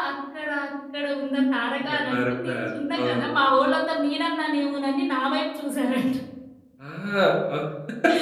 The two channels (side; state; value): both; identical; correlation 1.00